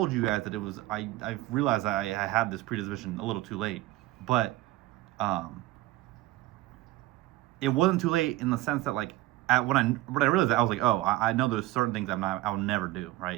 you guys that it was I realized I had this predisposition a little too late, but it wasn't too late in the sense that like when I realized that, I was like, oh, I know there's certain things I'll never do,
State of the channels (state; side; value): quieter; left; 17.2 dB